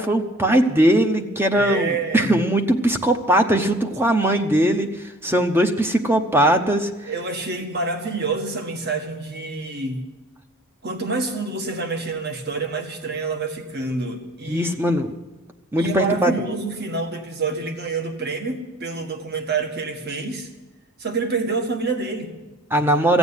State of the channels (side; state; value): both; normal; correlation 0.50